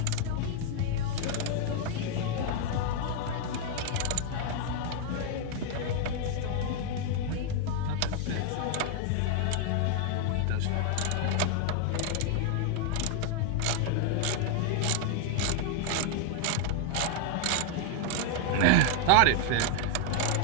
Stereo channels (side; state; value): both; different; correlation 0.00